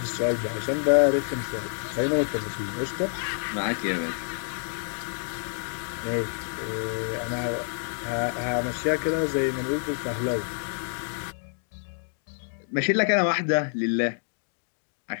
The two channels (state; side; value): silent; right; digital silence